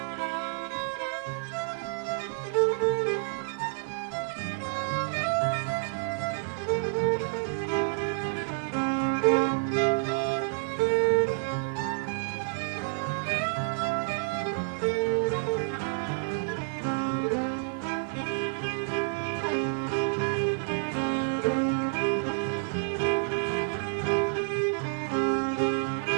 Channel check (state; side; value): silent; left; digital silence